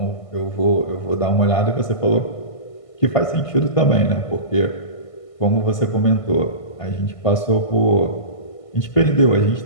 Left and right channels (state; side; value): late; right; 1.5 ms